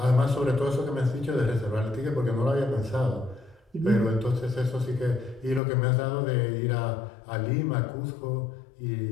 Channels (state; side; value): drops out; right; at 5.6 s